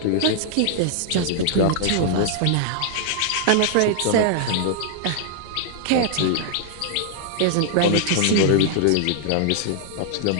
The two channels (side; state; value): both; different; correlation 0.00